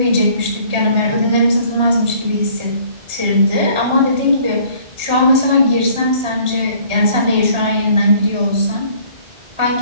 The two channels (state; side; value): late; left; 1.4 ms